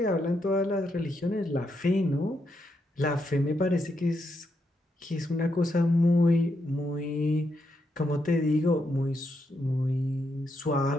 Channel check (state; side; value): normal; both; correlation 0.81